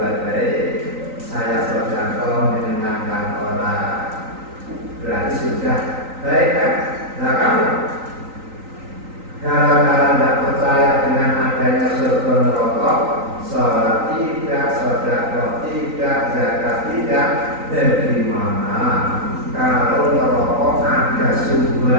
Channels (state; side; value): late; left; 3.9 ms